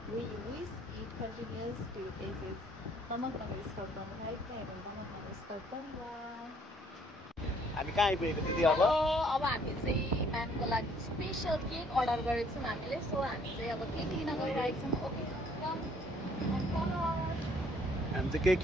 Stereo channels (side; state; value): both; normal; correlation 0.62